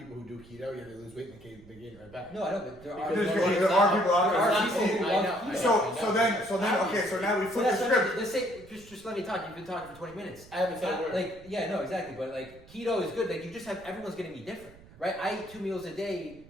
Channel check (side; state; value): right; noise; rumble, 22 dB below the sound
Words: who do keto, yeah, they lose weight and they gain it right back. No, I know, but there are. Because There are people out There there. are people who I love know, keto. I know. So then, okay, so now we So flip that's the what I mean. script. Let's say, just let me talk. You've been talking for 20 minutes. I haven't said a word. Like, yeah, no, exactly. But like, keto is good. Like, you just have everyone's gonna be different, right? I eat 2 meals a day,